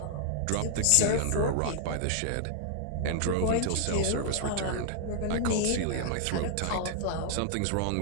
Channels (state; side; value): different; both; correlation -0.01